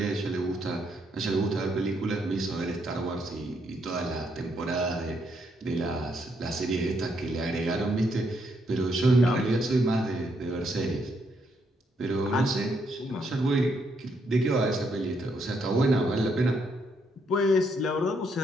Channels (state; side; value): normal; both; correlation 0.75